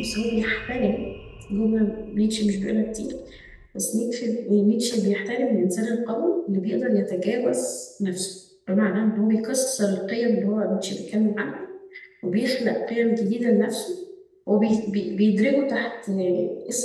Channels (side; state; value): both; identical; correlation 1.00